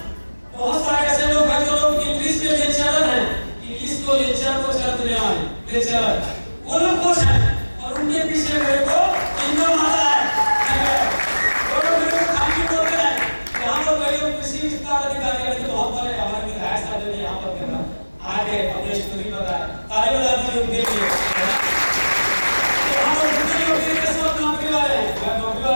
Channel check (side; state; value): both; inverted; correlation -1.00